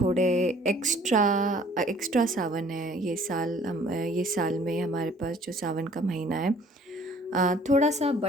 एक्स्ट्रा एक्स्ट्रा सावन है। ये साल में हमारे पास जो सावन का महीना है थोड़ा सा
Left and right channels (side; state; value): both; normal; correlation 0.55